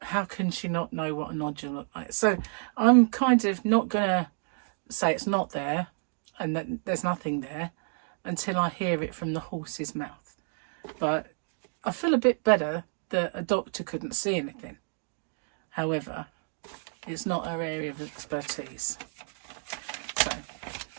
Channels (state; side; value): silent; left; 58 dB below the other